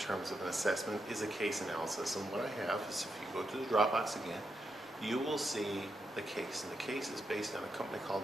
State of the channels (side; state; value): both; normal; correlation 0.84